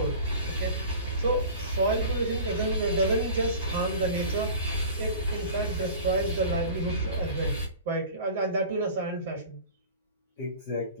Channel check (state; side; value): inverted; both; correlation -0.40